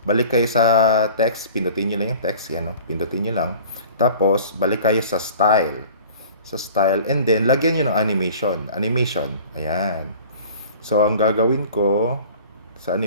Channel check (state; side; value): inverted; both; correlation -0.45